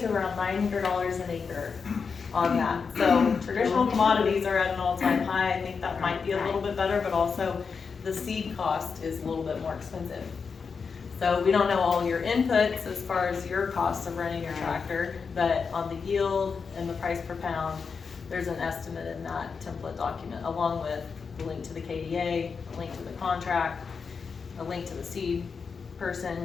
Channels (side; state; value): right; quieter; 5.5 dB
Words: to around $900 an acre on that. So traditional commodities are at an all-time high. I think that might be a little bit better, but also the seed cost is a little bit more expensive. So we don't know all your inputs as far as your costs of running your tractor, but on the yield and the price per pound, there's an estimate in that template document, along with the link to the KDA, a link to the contract, a link to the seed